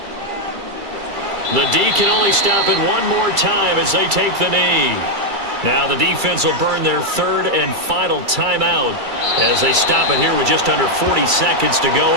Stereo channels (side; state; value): left; late; 2.3 ms